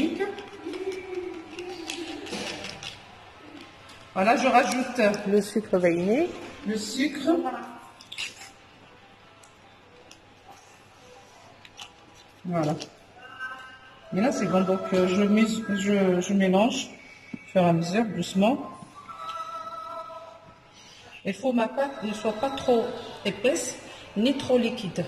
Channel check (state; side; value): identical; both; correlation 1.00